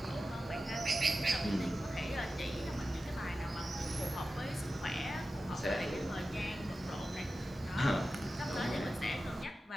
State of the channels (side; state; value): both; normal; correlation 0.93